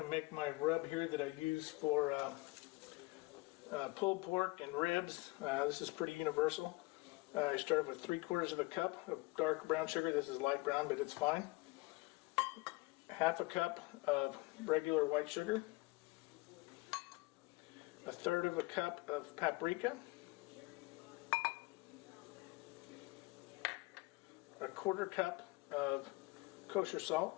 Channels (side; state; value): right; quieter; 23.8 dB